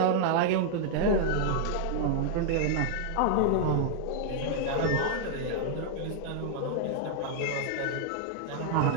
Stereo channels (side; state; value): both; different; correlation -0.01